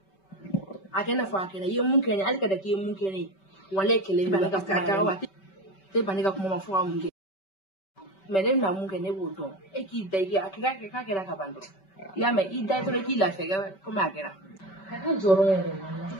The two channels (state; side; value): late; right; 5.2 ms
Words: a kɛ n'a fɔ a kɛra i ye mun kɛ ne hali ka da k'i ye mun kɛ ne ye walayi kɛlɛ in bɛ ka kuma wa tɛ ban ne ka kuma ma fɔ ka mun kɛ mais ne bɛna mun kɛ ne b'o dɔn e k'i da i k'a kɛra ka ban dɔrɔn i y'a mɛn i da dɔrɔn k'i lafiya komi a kɛra ka jɔrɔ yɛrɛ walayi